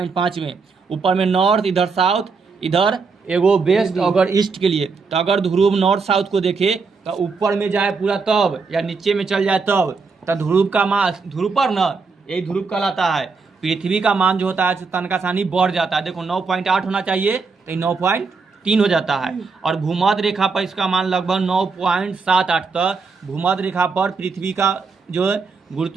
में, ऊपर में नॉर्थ, इधर साउथ, इधर एगो वेस्ट अगर ईस्ट के लिए। तो अगर ध्रुव नॉर्थ साउथ को देखे तो ऊपर में जाए पूरा तब, या नीचे में चल जाए तब, तो ध्रुव का मान, ध्रुव पर न, यही ध्रुव कहलाता है। पृथ्वी का मान जो होता है तनका सानी बढ़ जाता है। देखो 9.8 होना चाहिए तो 9.3 हो जाता है। और भूमध्य रेखा पर इसका मान लगभग 9.78 तक भूमध्य रेखा पर पृथ्वी का जो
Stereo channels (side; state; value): left; quieter; 4.7 dB